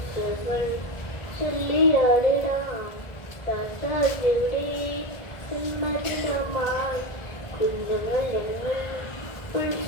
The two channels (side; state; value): right; late; 1.6 ms